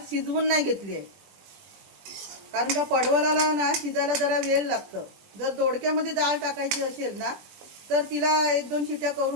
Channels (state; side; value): late; left; 20 ms